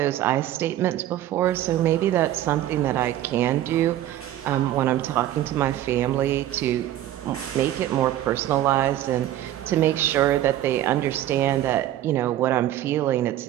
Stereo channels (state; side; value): quieter; left; 13.0 dB